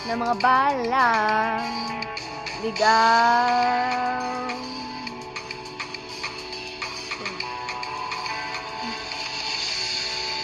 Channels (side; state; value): both; identical; correlation 1.00